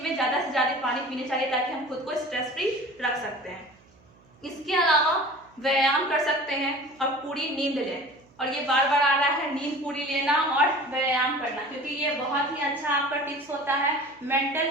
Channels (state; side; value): noise; right; hum, 30 dB below the sound